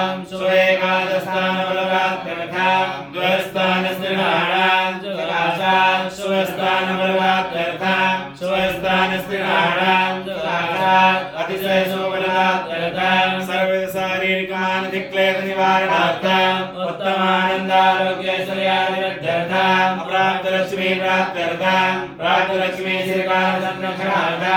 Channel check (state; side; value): identical; both; correlation 1.00